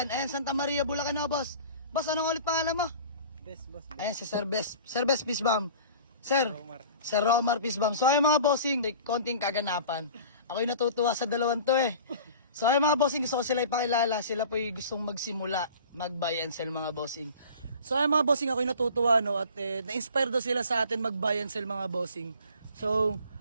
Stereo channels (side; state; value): both; inverted; correlation -0.43